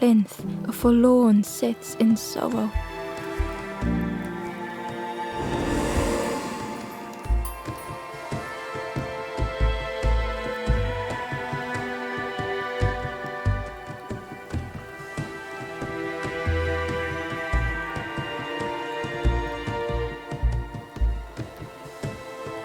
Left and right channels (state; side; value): identical; both; correlation 1.00